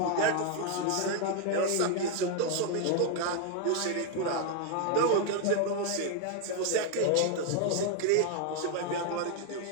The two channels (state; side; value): different; both; correlation 0.00